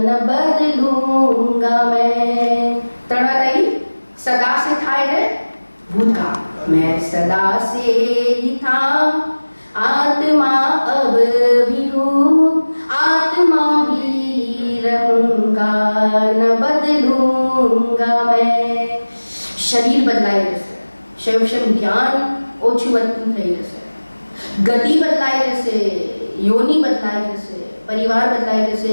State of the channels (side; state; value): both; inverted; correlation -1.00